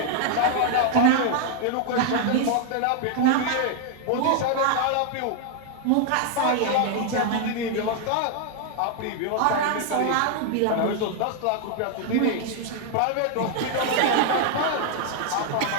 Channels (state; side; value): different; both; correlation 0.00